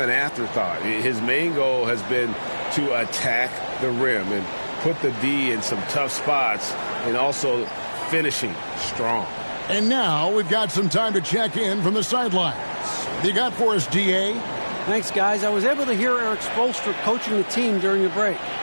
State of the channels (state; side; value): inverted; both; correlation -1.00